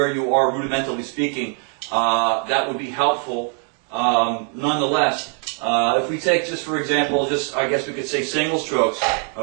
you are rudimentally speaking, that would be helpful. Nonetheless, if we take just for example, I guess we could say single strokes,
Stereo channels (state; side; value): quieter; left; 37.3 dB